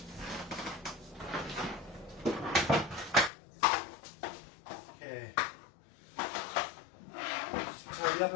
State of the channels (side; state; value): right; drops out; at 3.3 s